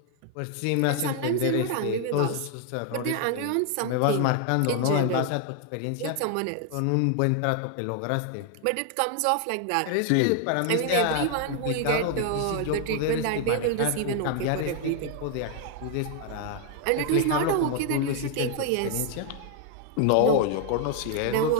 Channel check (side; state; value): both; different; correlation 0.00